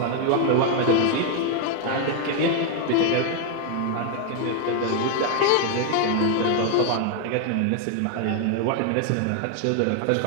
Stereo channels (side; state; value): both; different; correlation 0.00